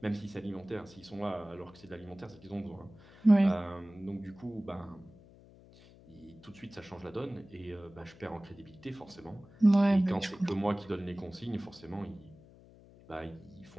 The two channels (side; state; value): left; noise; hum, 22 dB below the sound